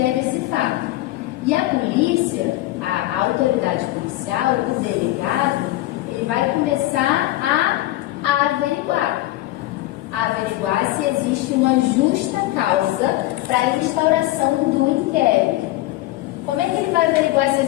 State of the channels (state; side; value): quieter; right; 16.9 dB